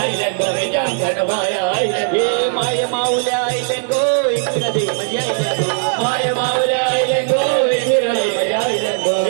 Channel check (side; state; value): left; silent; digital silence